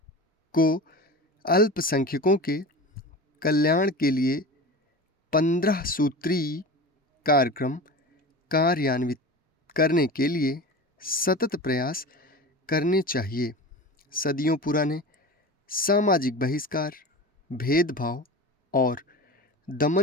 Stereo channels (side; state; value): both; normal; correlation 0.32